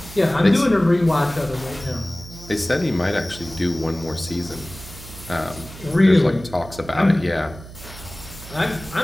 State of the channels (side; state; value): right; noise; hum, 16 dB below the sound